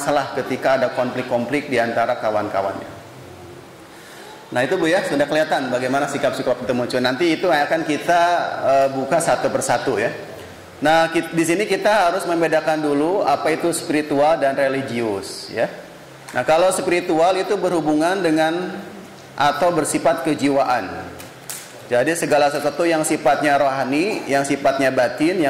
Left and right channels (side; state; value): both; identical; correlation 1.00